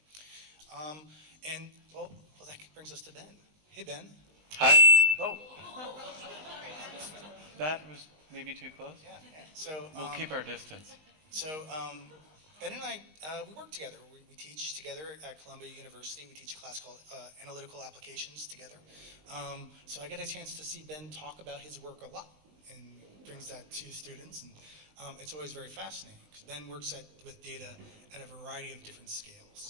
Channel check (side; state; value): left; late; 19 ms